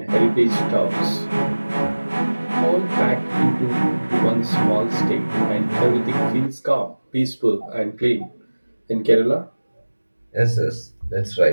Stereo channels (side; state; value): both; inverted; correlation -1.00